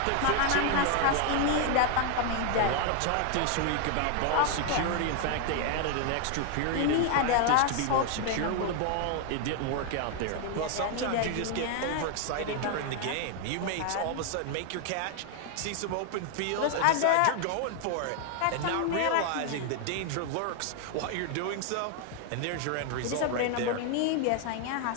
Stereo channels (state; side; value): different; both; correlation 0.00